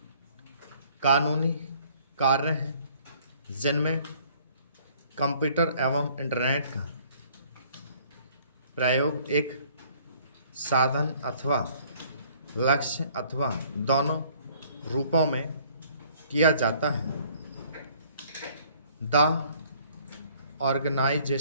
कानूनी कार्य हैं जिनमें कंप्यूटर एवं इंटरनेट का प्रयोग एक साधन अथवा लक्ष्य अथवा दोनों रूपों में किया जाता है। The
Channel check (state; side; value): inverted; both; correlation -0.59